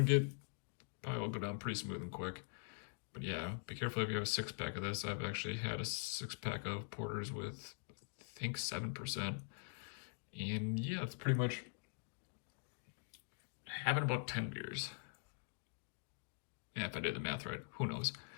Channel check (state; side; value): silent; right; digital silence